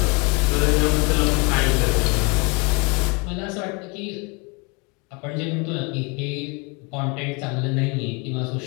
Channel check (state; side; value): quieter; right; 31.0 dB